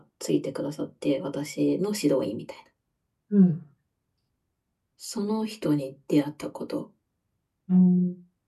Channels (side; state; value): both; identical; correlation 1.00